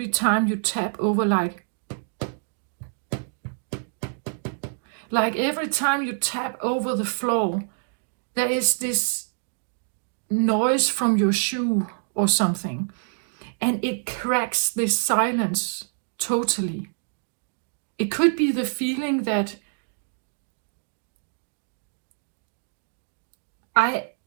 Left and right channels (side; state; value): left; silent; digital silence